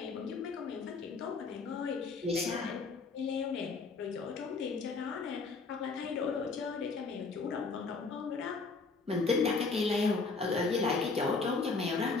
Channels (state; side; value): quieter; right; 4.2 dB